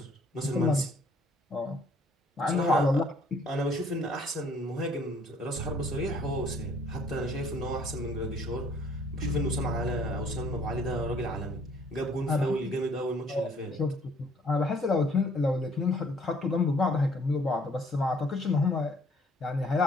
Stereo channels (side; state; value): both; normal; correlation 0.61